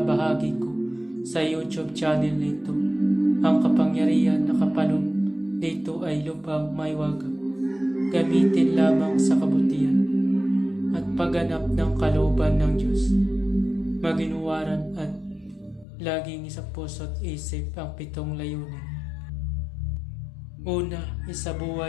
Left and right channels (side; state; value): right; drops out; at 15.9 s